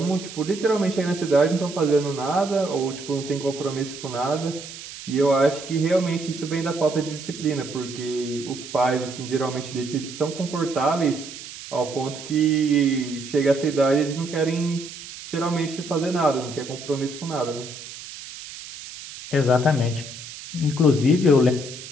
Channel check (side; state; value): right; noise; hiss, 13 dB below the sound